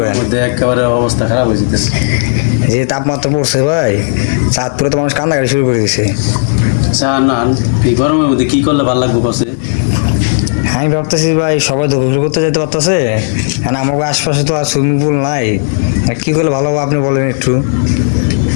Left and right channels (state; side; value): silent; right; digital silence